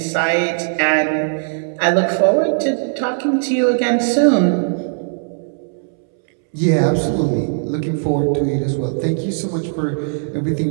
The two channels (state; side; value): silent; left; 66 dB below the other